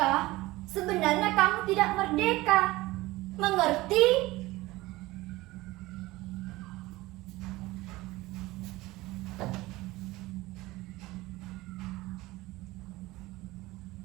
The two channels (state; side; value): quieter; left; 19.4 dB